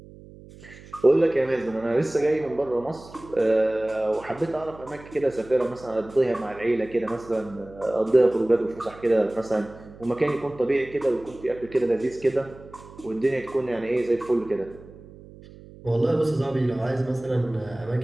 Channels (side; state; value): right; noise; hum, 19 dB below the sound